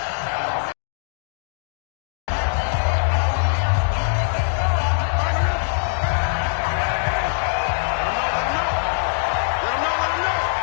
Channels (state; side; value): silent; right; 64 dB below the other